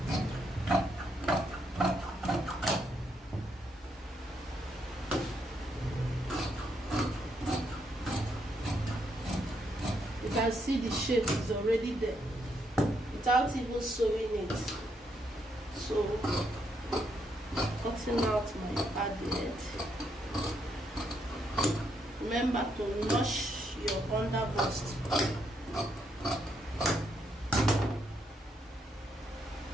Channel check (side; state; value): both; normal; correlation 0.76